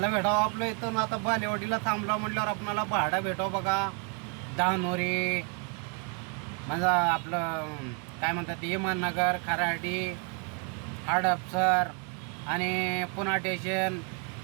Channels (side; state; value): left; quieter; 38.3 dB